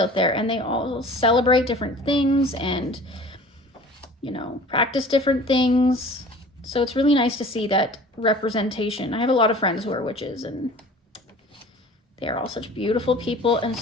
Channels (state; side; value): normal; both; correlation 0.44